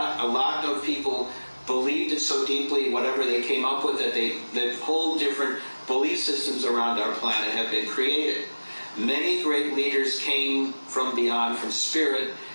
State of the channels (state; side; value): inverted; both; correlation -1.00